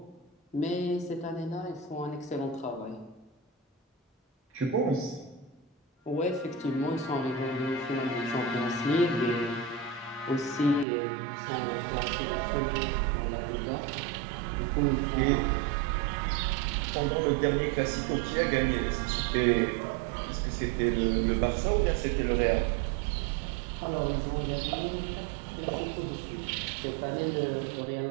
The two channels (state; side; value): drops out; left; at 10.9 s